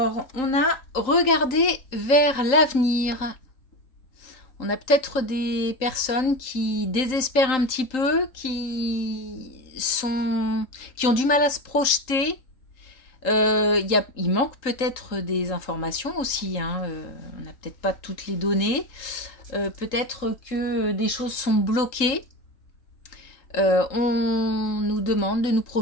on a regardé vers l'avenir. On a peut-être des personnes qui désespèrent un petit peu, qui ont du mal à se projeter. Il manque peut-être des informations aussi. On n'a peut-être pas toutes les données. Peut-être que des choses sont bloquées. On nous demande de nous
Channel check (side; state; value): right; late; 3.8 ms